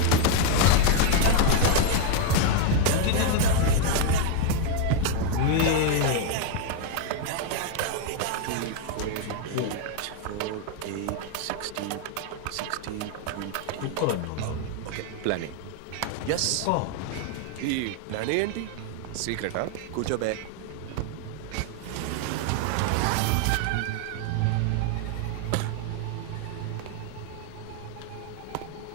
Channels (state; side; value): different; both; correlation 0.00